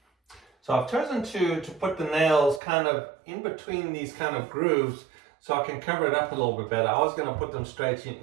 So I've chosen to put the nails kind of in between these kind of grooves so I can cover it up a little bit better. I was going to put them straight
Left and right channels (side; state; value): left; drops out; at 2.6 s